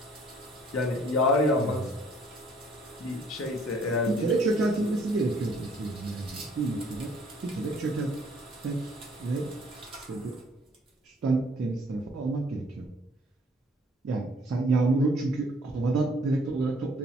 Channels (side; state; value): both; normal; correlation 0.60